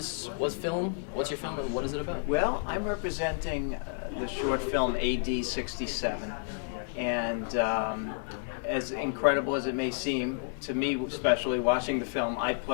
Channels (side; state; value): right; silent; digital silence